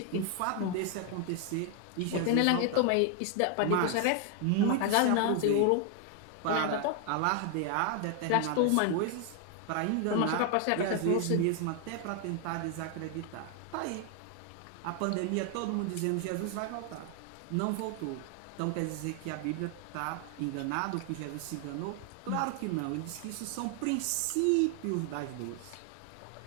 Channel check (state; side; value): different; both; correlation 0.00